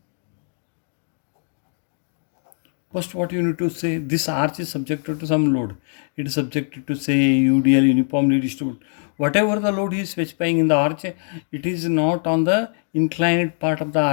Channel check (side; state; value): right; silent; 55 dB below the other